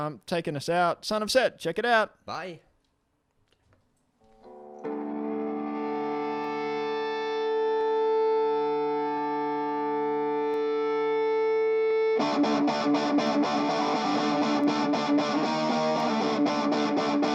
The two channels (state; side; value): identical; both; correlation 1.00